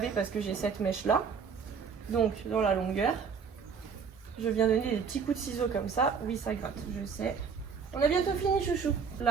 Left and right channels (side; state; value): left; quieter; 6.1 dB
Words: parce que j'ai cette mèche-là. Donc, dans la longueur, je viens donner des petits coups de ciseaux comme ça. Oui, ça gratte, je sais. On a bientôt fini, chouchou.